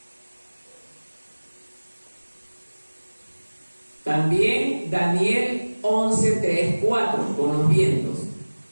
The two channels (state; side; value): inverted; both; correlation -1.00